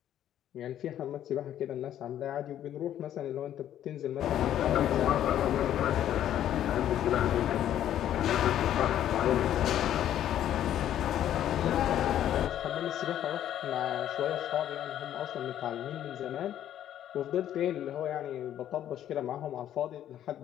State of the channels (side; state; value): right; quieter; 11.2 dB